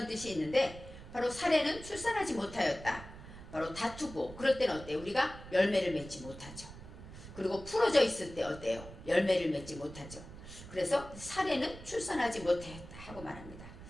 뜻이 있는데 바로 사레는 출산하지 못하였다. 바로 다투고 그럴 때는 어때요? 우리가 열매를 맺지 못하죠. 그리고 풀어져 있을 때 어때요? 열매를 맺지 못하죠. 그래서 사레는 출산하지 못하였다 하고 말합니다.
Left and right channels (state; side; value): noise; right; rumble, 14 dB below the sound